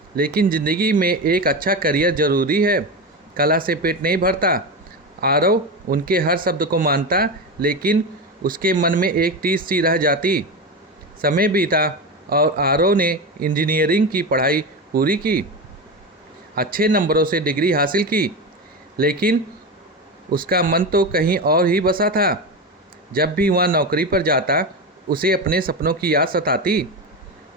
लेकिन ज़िंदगी में एक अच्छा करियर ज़रूरी है। कला से पेट नहीं भरता। आरव उनके हर शब्द को मानता, लेकिन उसके मन में एक टीस सी रह जाती। समय बीता और आरव ने इंजीनियरिंग की पढ़ाई पूरी की, अच्छे नंबरों से डिग्री हासिल की, लेकिन उसका मन तो कहीं और ही बसा था। जब भी वह नौकरी पर जाता, उसे अपने सपनों की याद सताती।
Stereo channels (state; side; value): normal; both; correlation 0.19